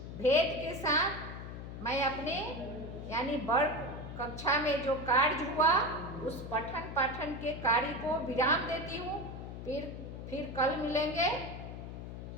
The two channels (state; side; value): noise; left; hum, 9 dB below the sound